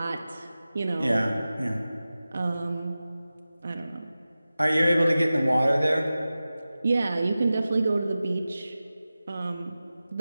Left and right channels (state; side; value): inverted; both; correlation -0.95